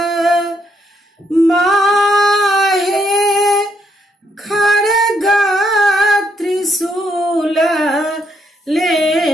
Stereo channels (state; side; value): normal; both; correlation 0.74